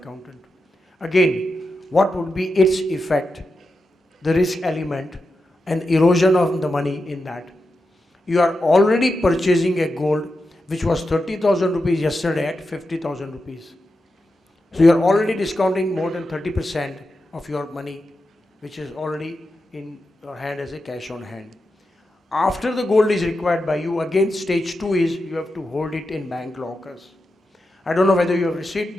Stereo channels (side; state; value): both; normal; correlation 0.89